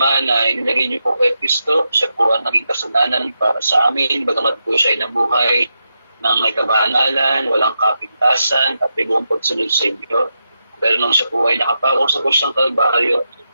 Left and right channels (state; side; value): inverted; both; correlation -0.86